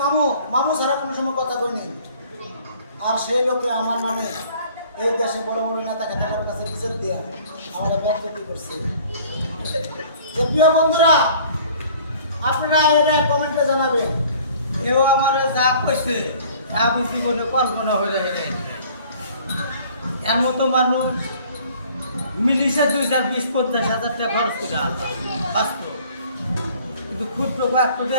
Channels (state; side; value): inverted; both; correlation -0.53